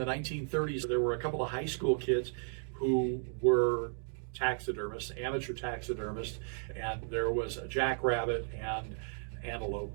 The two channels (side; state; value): left; silent; 55 dB below the other